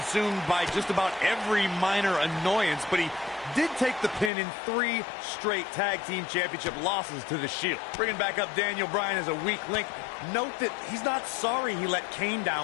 by just about every minor annoyance, but he did take the pin in 3 straight tag team championship losses to the Shield. Bringing back up Daniel Bryan as a weak link, note that he's not sorry he let Kane down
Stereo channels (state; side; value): drops out; right; at 4.3 s